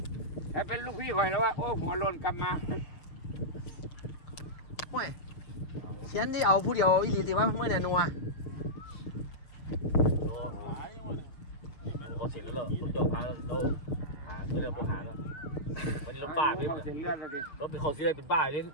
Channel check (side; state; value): right; late; 6.3 ms